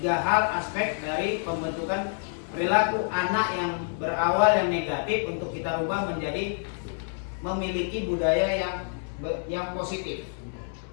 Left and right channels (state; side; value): silent; right; digital silence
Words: hal aspek dari pembentukan perilaku anak yang berawal yang negatif untuk kita rubah menjadi memiliki budaya yang positif.